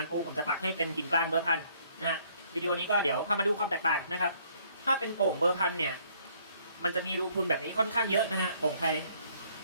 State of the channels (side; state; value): both; inverted; correlation -0.63